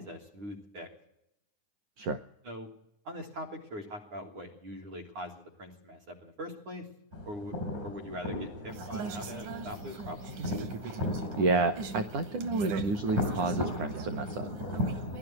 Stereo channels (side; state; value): left; late; 9.8 ms